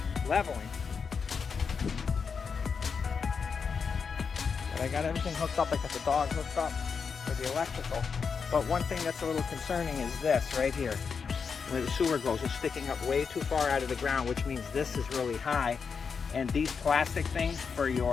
leveling. But I got everything hooked up. I got the dog hooked up for the electrical. But one thing that's a little concerning is this right here. Where the sewer goes, it's sticking up way too far out of the ground, which means this is really high. And these plastic things for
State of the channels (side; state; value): right; quieter; 5.8 dB